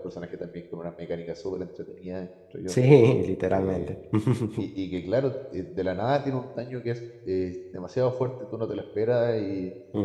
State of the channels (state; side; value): identical; both; correlation 1.00